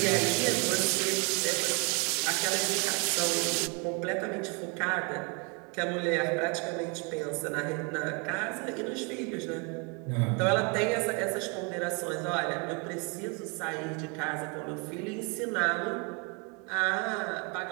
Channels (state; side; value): quieter; left; 32.8 dB